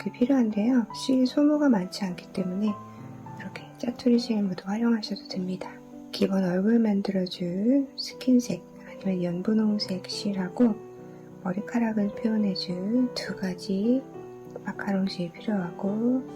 필요한데요. 실 소모가 많지 않기 때문에 이렇게 짜투리 실 모두 활용하셔도 됩니다. 기본 얼굴 만들어줄 스킨색 아니면 연분홍색 실하고 머리카락을 표현해줄 두 가지 마카롱 실 필요하고,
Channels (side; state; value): both; identical; correlation 1.00